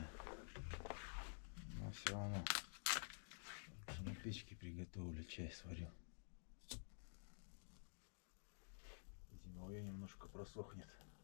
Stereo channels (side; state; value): right; silent; digital silence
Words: но все равно на печке приготовлю, чай сварю. Зимовье немножко просохнет